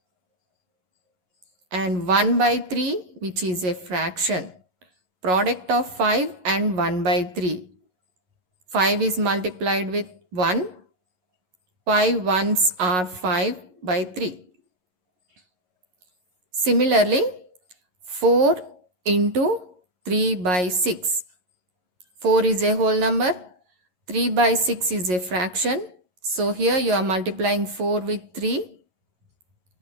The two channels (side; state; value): left; late; 11 ms